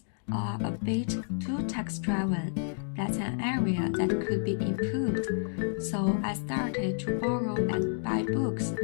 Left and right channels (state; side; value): silent; right; digital silence